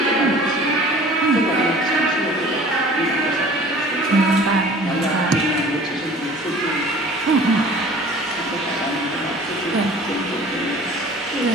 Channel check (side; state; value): both; normal; correlation 0.46